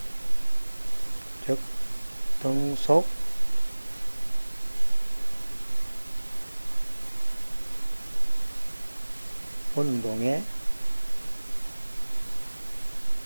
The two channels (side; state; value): both; inverted; correlation -1.00